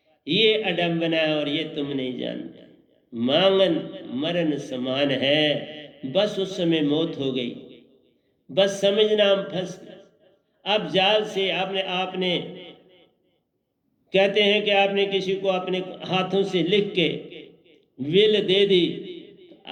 ये अडम्बना है और ये तुम नहीं जानते। मांगन मरण समान है, बस उस समय मौत हो गई, बस समझना हम फंस गए। अब जाल से आपने कहते हैं कि आपने किसी को अपने हाथों से लिख के विल दे दी,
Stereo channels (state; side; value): identical; both; correlation 1.00